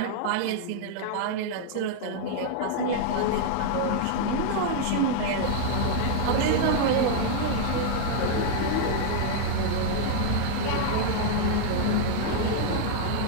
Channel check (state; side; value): different; both; correlation 0.00